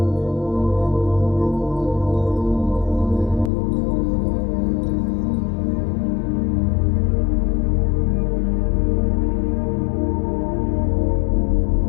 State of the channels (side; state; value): right; drops out; at 3.5 s